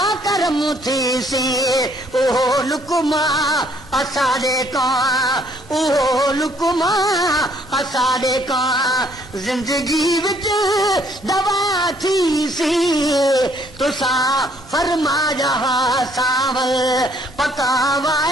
करम थी सी ओहो लुकमा असाडे का ओहो लुकमा असाडे का जिंदगी विच दवा थी सी तुसा फरमाया सावल पका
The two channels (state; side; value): normal; both; correlation 0.65